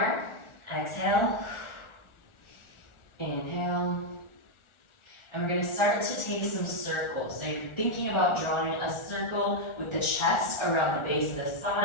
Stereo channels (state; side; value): late; right; 1.4 ms